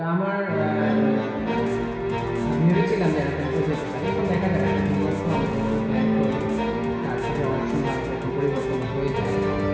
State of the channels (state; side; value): identical; both; correlation 1.00